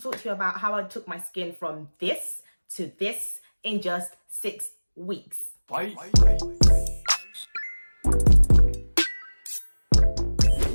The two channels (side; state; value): both; inverted; correlation -1.00